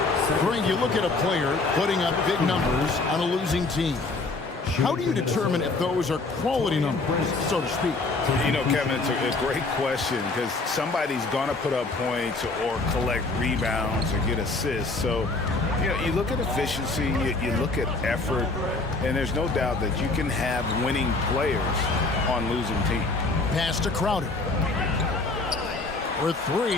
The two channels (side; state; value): right; quieter; 3.5 dB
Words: Frank, you look at a player putting up big numbers on a losing team. How do you determine if those are quality numbers, so to speak? You know, Kevin, it's a great question because somebody's going to put up points or collect rebounds or get assists. So, you know, you look at efficiency, you look at effort, and there's no doubt that you can have winning players on losing teams. Pass to Crowder. For